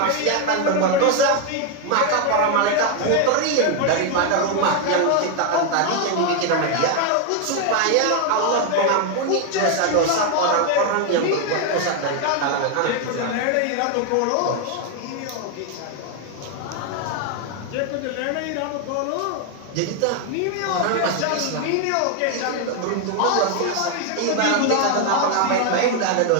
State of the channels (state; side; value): different; both; correlation 0.01